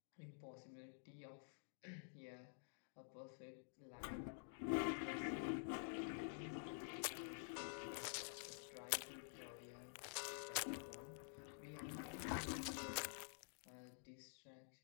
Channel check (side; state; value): right; silent; digital silence